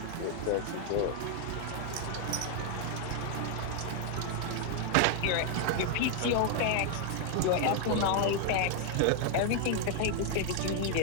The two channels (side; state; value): both; different; correlation 0.00